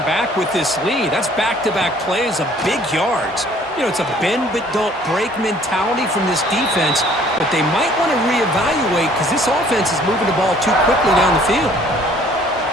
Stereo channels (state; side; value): normal; both; correlation 0.57